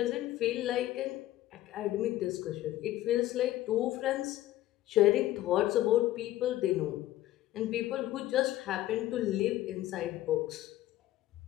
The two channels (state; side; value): quieter; right; 14.7 dB